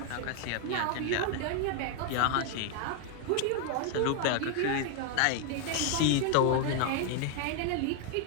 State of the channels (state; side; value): different; both; correlation 0.00